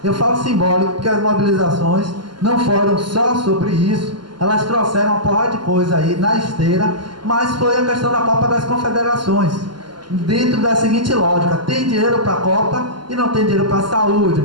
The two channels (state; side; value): late; left; 0.71 ms